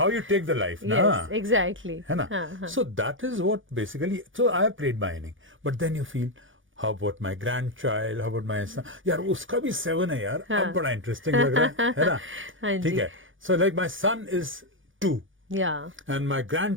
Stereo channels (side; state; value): left; late; 0.57 ms